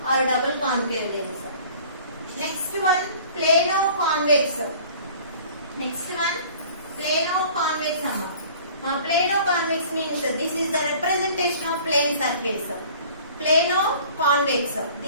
or double concave lens. Next one, plano-convex. Plano-convex. Now, plano-convex means this is the representation of plane surface. Plano-convex.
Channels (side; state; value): both; inverted; correlation -0.49